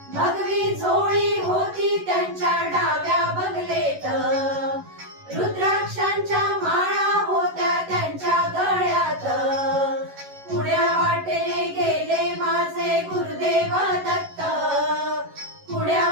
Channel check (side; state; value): left; late; 11 ms